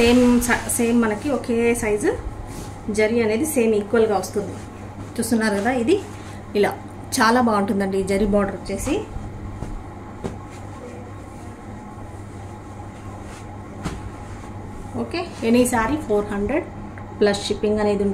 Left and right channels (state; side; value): identical; both; correlation 1.00